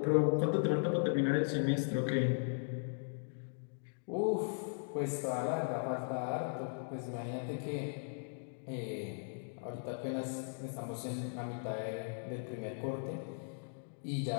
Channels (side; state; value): right; silent; digital silence